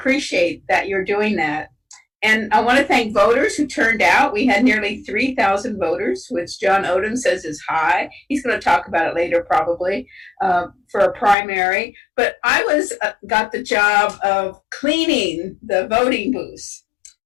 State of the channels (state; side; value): drops out; right; at 11.4 s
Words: that you're doing that. And I want to thank voters who turned out. We had nearly 3,000 voters, which John Odum says is high. He's going to talk about it later, probably, for a primary. But I got the job of cleaning the voting booths.